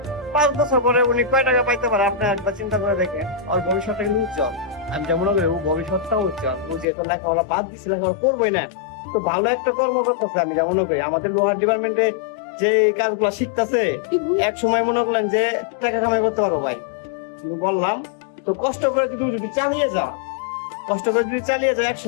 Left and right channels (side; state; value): right; drops out; at 6.9 s